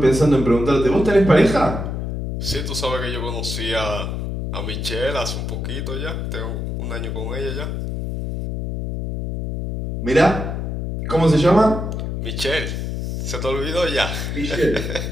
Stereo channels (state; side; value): noise; left; hum, 3 dB below the sound